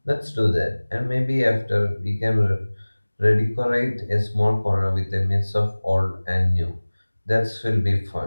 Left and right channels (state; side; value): inverted; both; correlation -1.00